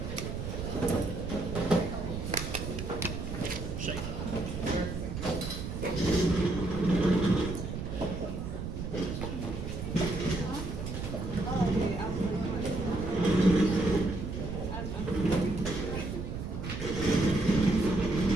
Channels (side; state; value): right; noise; rumble, 6 dB below the sound